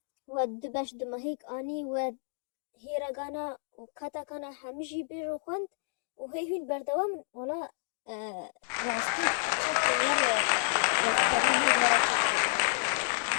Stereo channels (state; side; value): silent; right; digital silence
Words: و دبش دمهیک آنی و هیرگانا و کاتاکانا همیشی بیرو خوند و هین بردوام ولا راستی چک